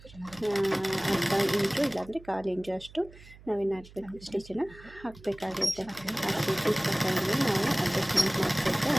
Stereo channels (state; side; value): noise; right; hum, 21 dB below the sound